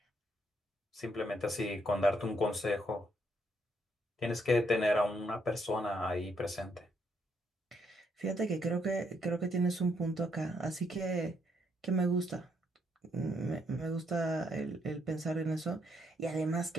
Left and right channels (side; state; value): both; normal; correlation 0.74